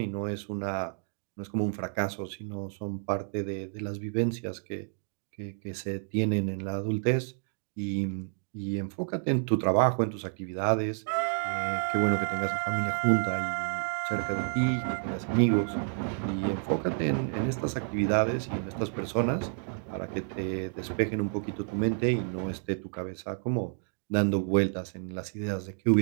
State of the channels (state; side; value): silent; left; 58 dB below the other